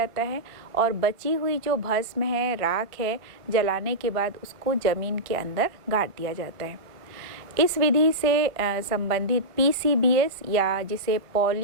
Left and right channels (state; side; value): late; left; 1.4 ms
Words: है और बची हुई जो भस्म है, राख है, जलाने के बाद उसको ज़मीन के अंदर गाड़ दिया जाता है। इस विधि से संबंधित PCBS या जिसे